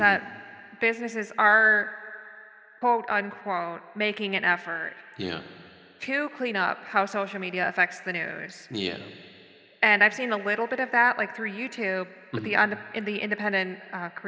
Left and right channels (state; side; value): identical; both; correlation 1.00